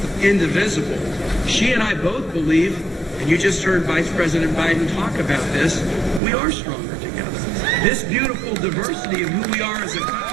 indivisible. She and I both believe, and you just heard Vice President Biden talk about this, we are stronger together. This beautiful diversity of who we are as a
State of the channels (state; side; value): drops out; left; at 6.2 s